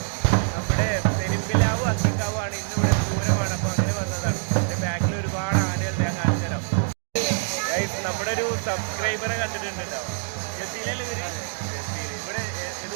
നമ്മുടെ പെരുമ്പിലാവ് അക്കിക്കാവാണ്. ഇന്നിവിടെ പൂരമാണ്, അപ്പോൾ അങ്ങനെ വന്നതാണ്. എൻ്റെ ബാക്കിൽ ഒരുപാട് ആനകൾ ഞാൻ കാണിച്ചു തരാം. ഗൈസ്, നമ്മുടെ ഒരു സബ്സ്ക്രൈബറെ കണ്ടിട്ടുണ്ട് കേട്ടോ. ജസീലല്ലേ ഇവര്? ജസീൽ. ഇവിടെ ഏത്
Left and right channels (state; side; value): silent; left; digital silence